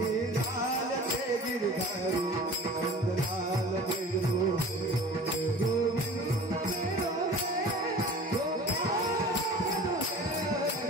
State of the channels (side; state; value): both; normal; correlation 0.42